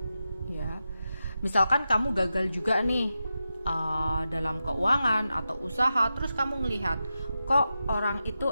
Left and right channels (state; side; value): inverted; both; correlation -0.90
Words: Ya, misalkan kamu gagal juga nih dalam keuangan atau usaha, terus kamu ngelihat kok orang itu